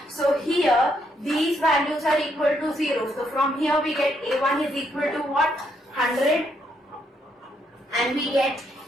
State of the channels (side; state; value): both; normal; correlation 0.75